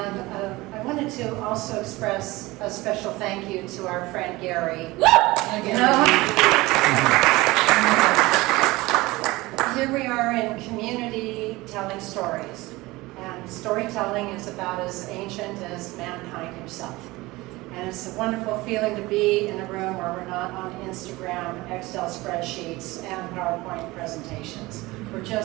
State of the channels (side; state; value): left; quieter; 20.6 dB